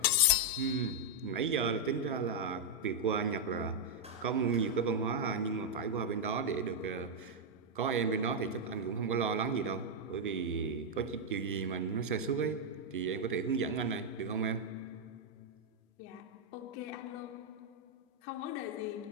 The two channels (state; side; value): normal; both; correlation -0.02